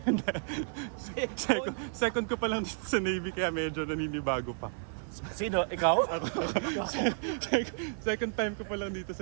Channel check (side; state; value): left; silent; 56 dB below the other